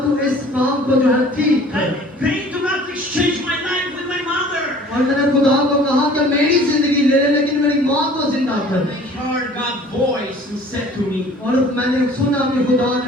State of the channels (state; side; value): normal; both; correlation 0.49